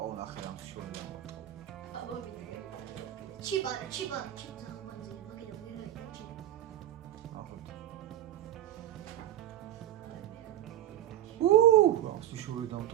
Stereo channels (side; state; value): left; quieter; 12.5 dB